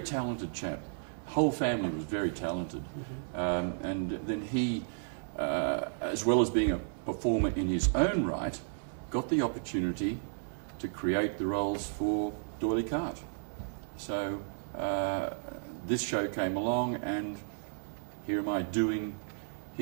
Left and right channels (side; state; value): left; silent; digital silence